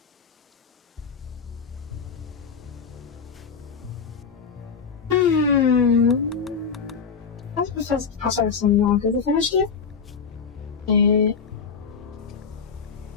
That's because the process is so long. Is it finished yet?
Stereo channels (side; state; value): right; quieter; 5.9 dB